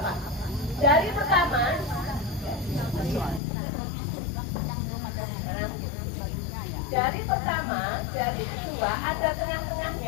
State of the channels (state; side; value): drops out; right; at 3.4 s